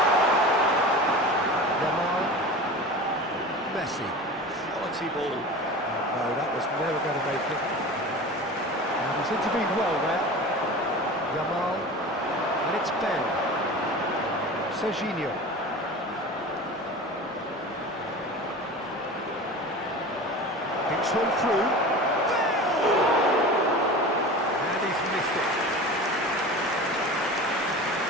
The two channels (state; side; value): normal; both; correlation 0.34